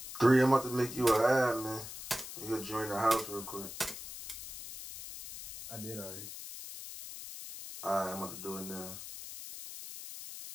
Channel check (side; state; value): left; noise; hiss, 11 dB below the sound